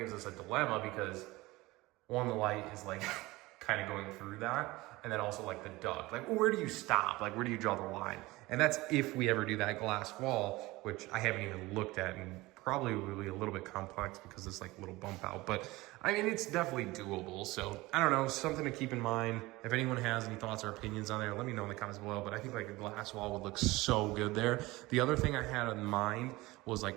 us a dilemma because one, the light is like kind of going through that. And then also like the duct, like where do you stop? Like where do you draw the line? And that's if we ever do that glass wall, which I haven't even looked at, and probably will be a little bit complex because it's like a little bump out, but I mean, it's definitely doable. So I don't know, something to keep in mind. If anyone has any thoughts or opinions on there, let me know in the comments below. But I think like a glass wall would look so good there. The other thing I had in mind was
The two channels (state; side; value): quieter; left; 20.4 dB